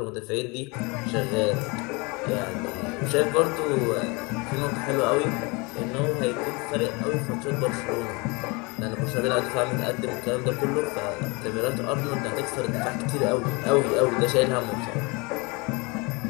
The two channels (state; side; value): quieter; right; 28.0 dB